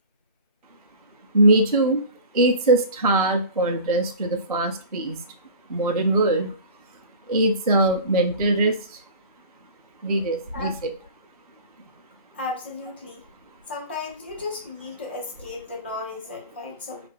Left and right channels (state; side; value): inverted; both; correlation -0.38